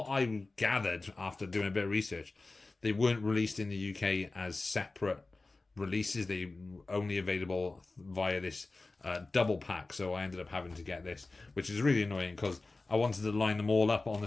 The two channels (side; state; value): right; quieter; 3.4 dB